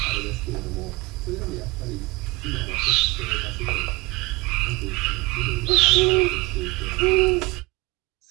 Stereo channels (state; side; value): quieter; left; 23.7 dB